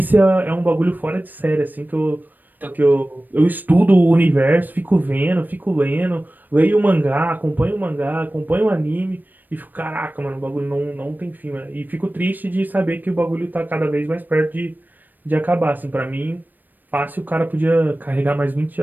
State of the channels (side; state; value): left; late; 0.089 ms